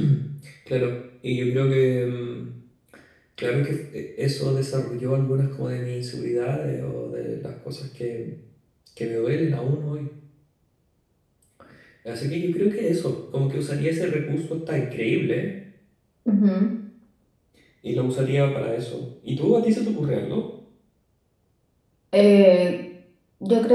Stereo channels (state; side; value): identical; both; correlation 1.00